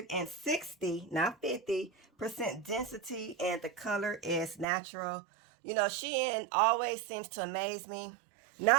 not 50% density, and the color is natural. You know, Shein always seems to amaze me.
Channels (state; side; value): drops out; left; at 4.7 s